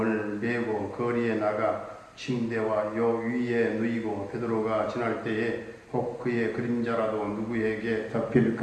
메고 거리에 나가 침대와 요 위에 누이고 베드로가 지날 때에 혹 그의 그림자라도 누구에게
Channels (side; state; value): both; identical; correlation 1.00